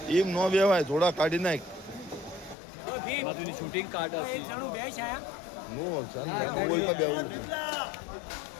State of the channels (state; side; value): drops out; right; at 2.6 s